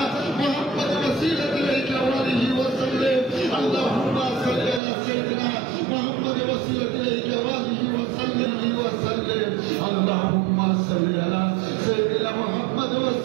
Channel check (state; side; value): drops out; left; at 4.8 s